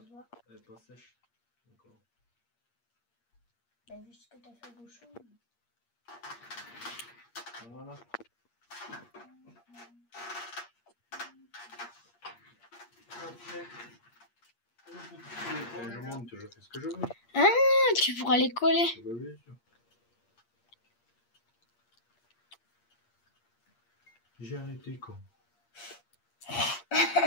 voit. Elle est pas sèche. D'accord. Bah vu ce que t'as fait au bouchon. Voilà. Je monte, je fais ce que je veux. Ah, tu pourras les coller. Bah oui, sûr. J'ai arrêté quand.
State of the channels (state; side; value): late; right; 8.5 ms